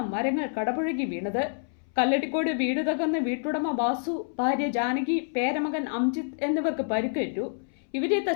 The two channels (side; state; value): right; silent; 60 dB below the other